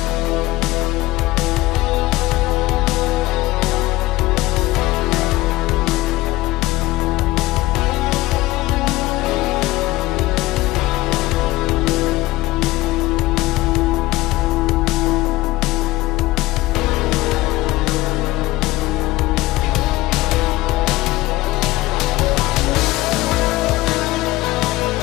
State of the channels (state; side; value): quieter; right; 18.7 dB